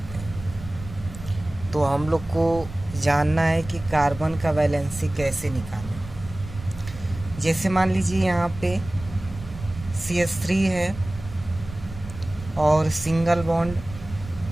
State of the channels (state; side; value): noise; right; rumble, 13 dB below the sound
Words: हैं। तो हम लोग को जानना है कि कार्बन का वैलेंसी कैसे निकालें। जैसे मान लीजिए यहाँ पे CH3 है और single bond